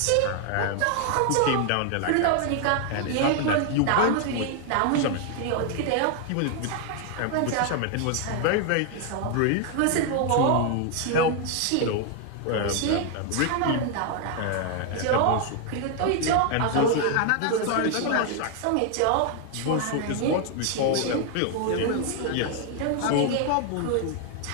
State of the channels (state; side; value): different; both; correlation 0.00